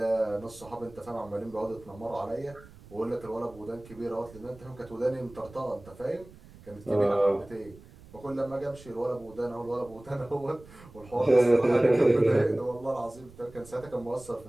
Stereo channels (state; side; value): noise; right; rumble, 21 dB below the sound